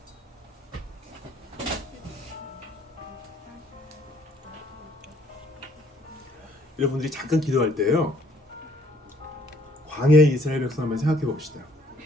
여러분들이 잠깐 기도할 때요, 광야의 이스라엘 백성 한번 생각해 봅시다.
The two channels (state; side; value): normal; both; correlation 0.62